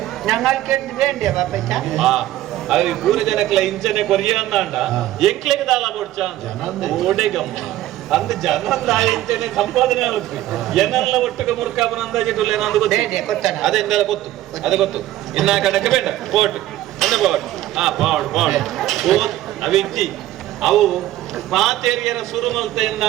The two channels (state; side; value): quieter; left; 14.3 dB